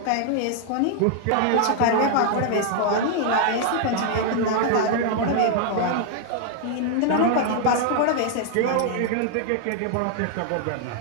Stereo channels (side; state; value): both; different; correlation 0.00